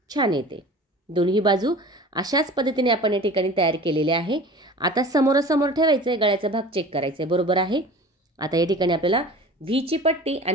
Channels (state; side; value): normal; both; correlation 0.40